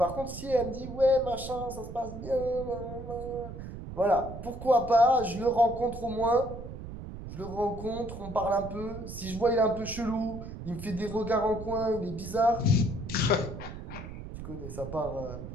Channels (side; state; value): right; noise; rumble, 10 dB below the sound